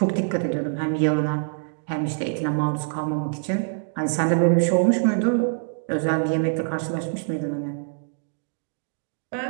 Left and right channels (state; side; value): silent; left; digital silence